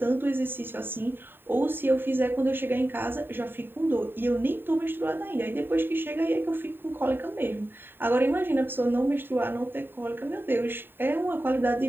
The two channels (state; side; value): late; left; 0.098 ms